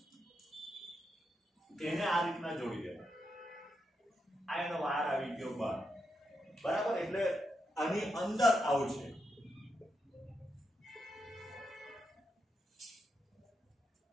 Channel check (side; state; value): both; normal; correlation 0.84